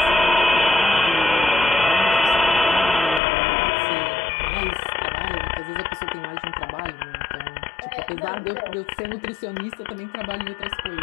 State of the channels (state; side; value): drops out; right; at 3.2 s